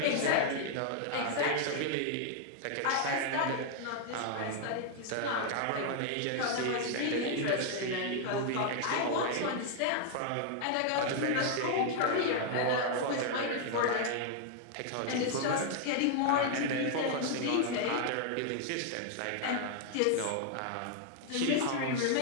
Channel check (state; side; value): different; both; correlation 0.00